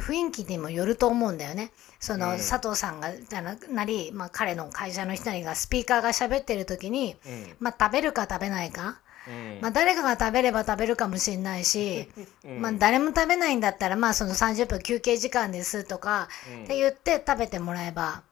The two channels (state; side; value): quieter; right; 14.5 dB